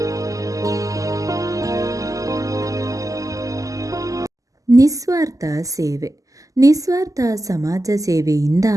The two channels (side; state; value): left; late; 0.16 ms